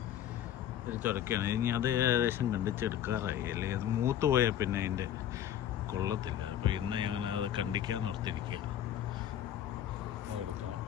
ഒരു ചുരക്കയാണ്. ഇനി അത് ഏകദേശം കണ്ടിച്ചെടുക്കാറായി, അല്ലെങ്കിൽ അത് മൂത്ത് പോയാൽ പിന്നെ അതിൻ്റെ കൊള്ളത്തില്ല. അപ്പോൾ ഇന്ന് ഞങ്ങൾ അത് കണ്ടിക്കാൻ ഓർത്തിരിക്കുക, എടുക്കണം.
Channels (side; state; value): right; quieter; 10.7 dB